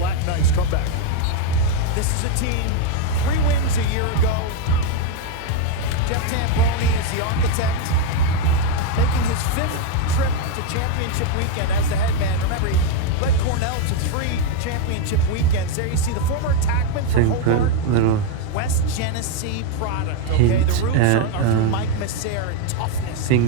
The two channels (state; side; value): different; both; correlation 0.02